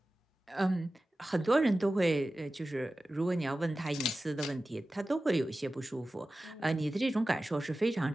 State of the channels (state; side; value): normal; both; correlation 0.95